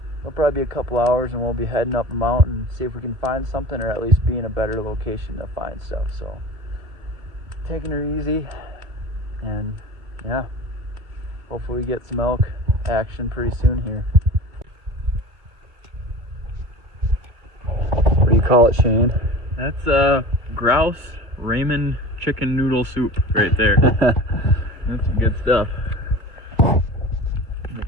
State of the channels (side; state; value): left; late; 2.3 ms